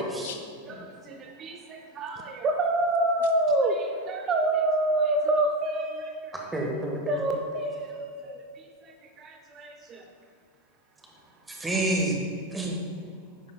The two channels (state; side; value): normal; both; correlation 0.18